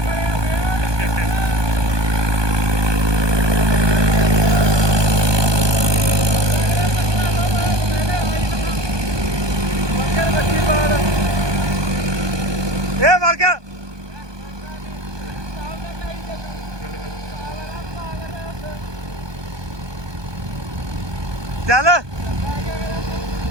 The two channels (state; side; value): late; left; 1.2 ms